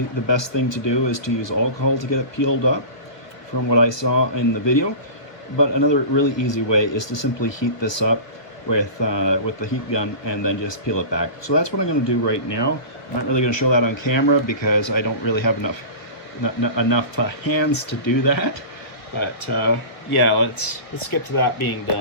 best thing to do is to use alcohol to get it peeled up, from what I saw in the video. But another really easy way is to simply heat this up with the heat gun and then just peel it back. So that's what I'm going to do right now. I'm not really going to show that on camera because I don't really have enough hands to do that. But yeah, let's get to that being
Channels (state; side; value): late; right; 1.5 ms